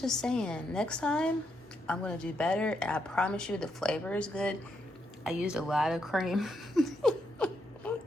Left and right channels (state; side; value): normal; both; correlation 0.79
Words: saying, next time, I'm going to do better. And I promise you the flavor is good. I used a lot of cream.